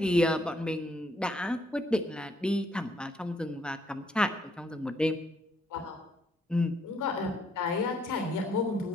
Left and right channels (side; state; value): both; normal; correlation 0.70